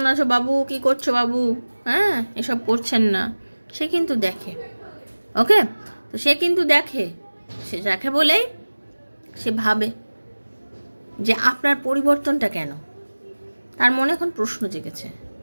আছো বাবু, কি করছো বাবু, হ্যাঁ, এসব করছেন না। সে কিন্তু দেখে, ওকে। তো সে কিন্তু দেখে, সে দেখে বলেই সে ভাবে যে আপনার পরিবর্তনটা কেন। তার মনে এখন প্রশ্ন জেগেছে,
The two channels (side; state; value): both; inverted; correlation -1.00